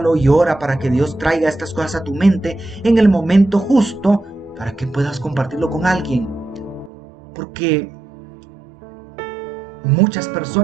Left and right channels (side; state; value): left; drops out; at 6.9 s